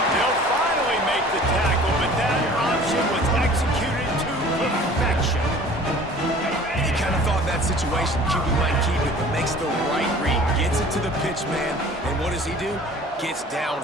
They'll finally make the tackle, but that option was executed to perfection. And you kind of thought that situation, QB might keep it, but makes the right read. Gets it to the pitch man, and what does he do? Gets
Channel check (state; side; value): normal; both; correlation 0.47